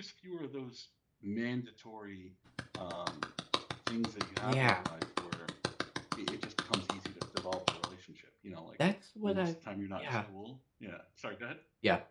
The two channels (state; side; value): identical; both; correlation 1.00